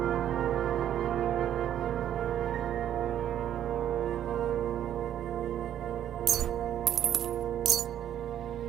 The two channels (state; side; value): quieter; left; 10.7 dB